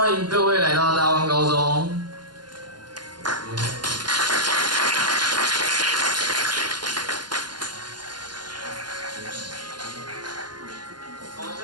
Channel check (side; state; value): left; late; 0.71 ms